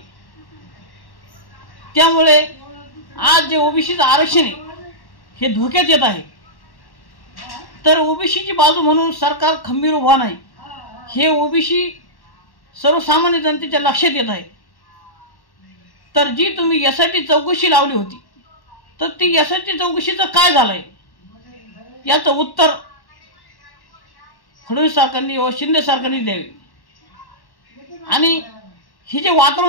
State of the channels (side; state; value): right; late; 1.1 ms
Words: त्यामुळे आज जे ओबीसीचं आरक्षण आहे हे धोक्यात येत आहे. तर ओबीसीची बाजू म्हणून सरकार खंबीर उभा नाही, हे ओबीसी सर्वसामान्य जनतेच्या लक्षात येत आहे. तर जी तुम्ही SIT चौकशी लावली होती, तर ती SIT चौकशीचं काय झालंय याचं उत्तर फडणवीस सरकारने व शिंदे सरकारने द्यावे. आणि हे जे